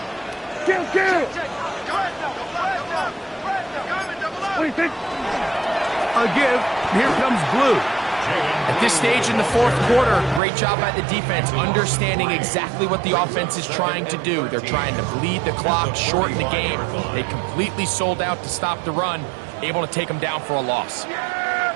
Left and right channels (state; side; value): drops out; left; at 10.4 s